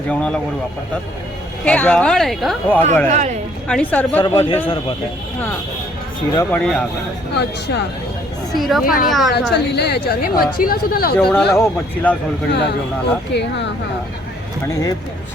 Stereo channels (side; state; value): both; normal; correlation 0.63